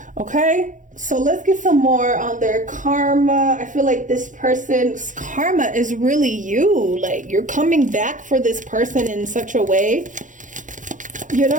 Okay, so let's get some more on their karma. I feel like this person's karma is really you. Like, you're coming back for this person in such a way, you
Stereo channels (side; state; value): left; late; 0.37 ms